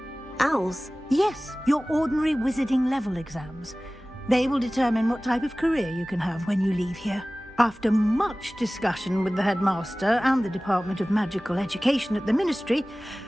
Owls? Yes, your ordinary wizarding level exams. They will determine what type of career you can have when you leave here. After much discussion with the headmaster and the Department of Magical Education at the Ministry,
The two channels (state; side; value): normal; both; correlation 0.98